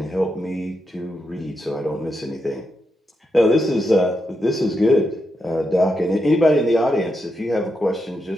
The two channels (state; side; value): normal; both; correlation 0.84